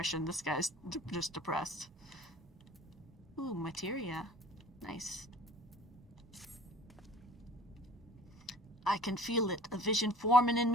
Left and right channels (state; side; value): normal; both; correlation 0.48